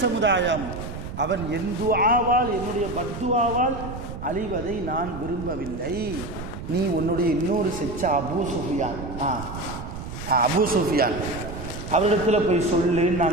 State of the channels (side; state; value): right; noise; rumble, 9 dB below the sound